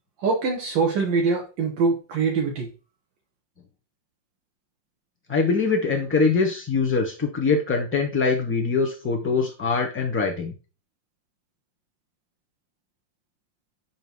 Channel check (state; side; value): late; left; 5.6 ms